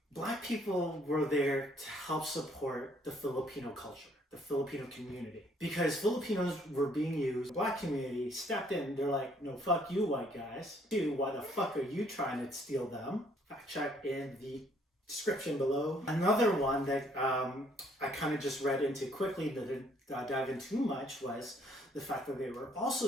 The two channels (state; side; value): normal; both; correlation 0.64